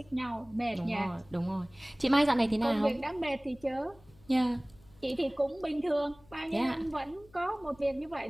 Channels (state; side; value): noise; left; hum, 27 dB below the sound